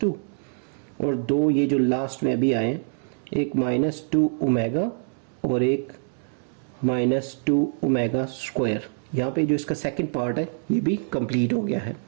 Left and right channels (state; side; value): silent; left; digital silence